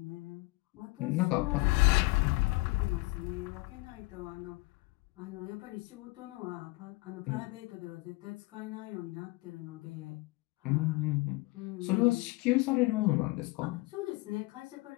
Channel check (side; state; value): right; quieter; 22.4 dB